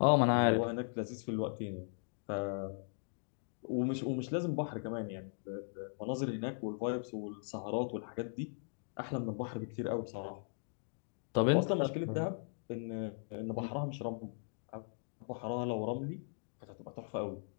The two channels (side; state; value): right; silent; digital silence